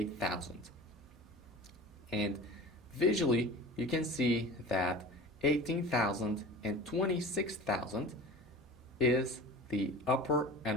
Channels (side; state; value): both; normal; correlation 0.36